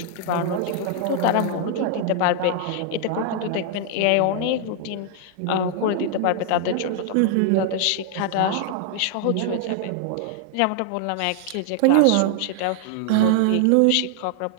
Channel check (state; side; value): different; both; correlation 0.00